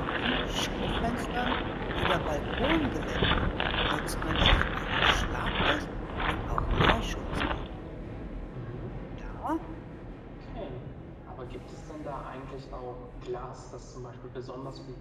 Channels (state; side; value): identical; both; correlation 1.00